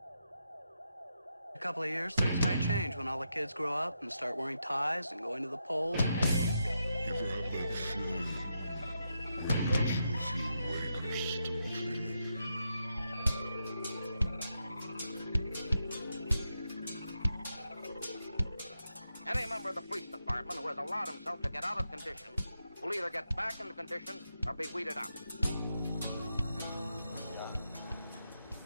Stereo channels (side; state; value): both; inverted; correlation -0.84